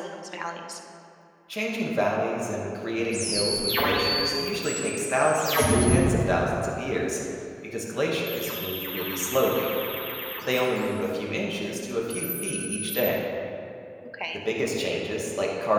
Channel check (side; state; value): both; identical; correlation 1.00